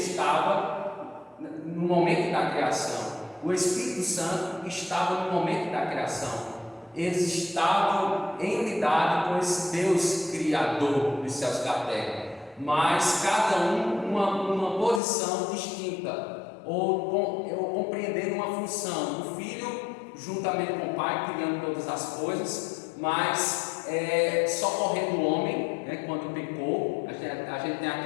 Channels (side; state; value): right; drops out; at 15.0 s